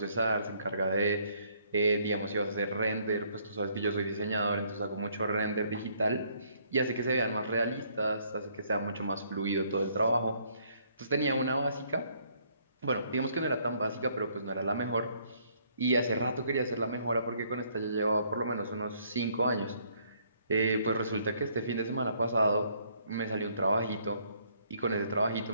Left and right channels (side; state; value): both; inverted; correlation -0.66